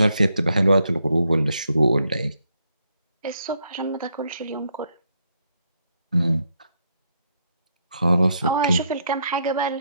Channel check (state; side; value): inverted; both; correlation -0.76